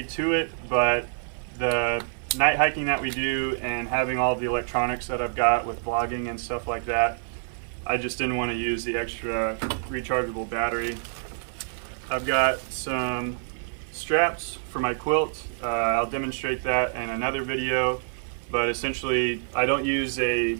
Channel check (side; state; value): left; silent; 58 dB below the other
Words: to it, but the night hiking that we do and having all the electronics that I've got with vlogging and stuff like that, I just didn't want to use the extra rechargeable battery. I've got some straps for my quilt. I'll demonstrate that in another video, but essentially I don't use a